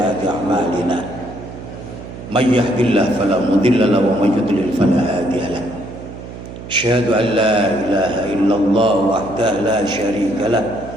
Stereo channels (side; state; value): right; noise; hum, 12 dB below the sound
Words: a'malina. May yahdihillahu fala mudilla lahu wa may yudlil fala hadiya lahu. Asyhadu an la ilaha illallah wahdahu la syarika lah